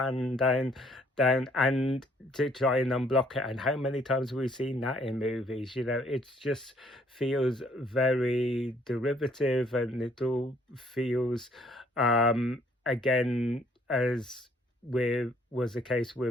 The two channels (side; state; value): both; normal; correlation 0.63